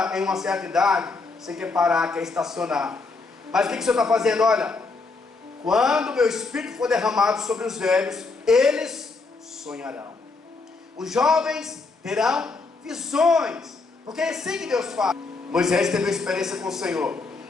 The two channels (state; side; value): quieter; right; 3.9 dB